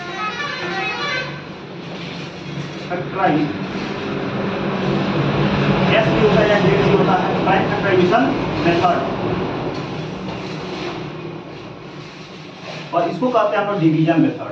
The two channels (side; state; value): both; identical; correlation 1.00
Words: factorisation एस भी होता है या जेड भी होता है, प्राइम फैक्टराइजेशन मेथड। और इसको कहते हैं हम लोग division